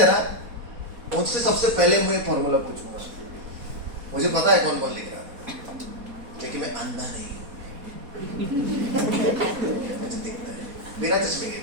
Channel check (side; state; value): left; late; 4.2 ms